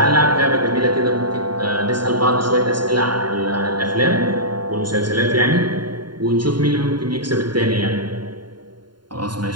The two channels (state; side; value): late; left; 0.72 ms